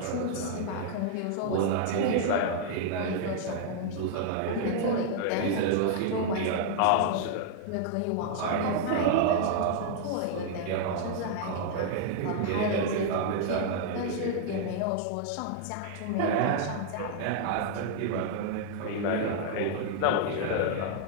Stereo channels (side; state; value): both; different; correlation -0.01